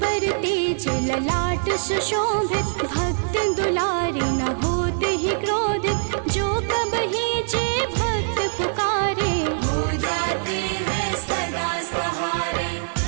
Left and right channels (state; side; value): silent; left; digital silence